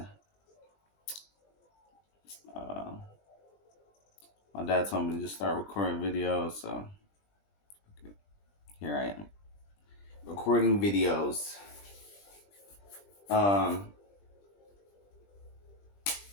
Uh, my dad told me to just start recording videos, so here I am recording videos. I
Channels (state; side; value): late; right; 20 ms